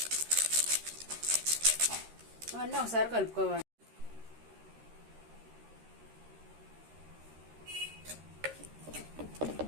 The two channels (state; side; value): late; left; 13 ms